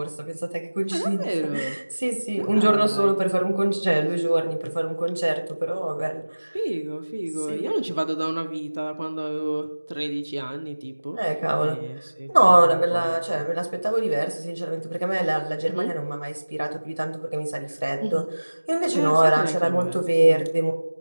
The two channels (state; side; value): inverted; both; correlation -1.00